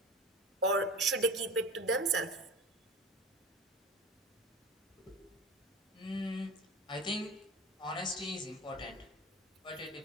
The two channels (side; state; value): both; normal; correlation 0.33